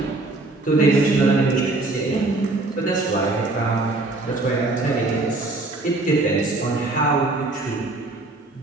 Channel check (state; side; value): quieter; left; 3.1 dB